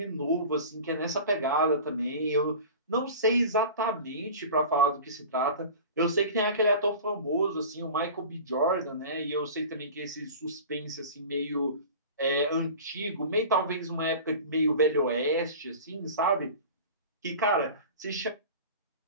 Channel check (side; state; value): both; inverted; correlation -0.37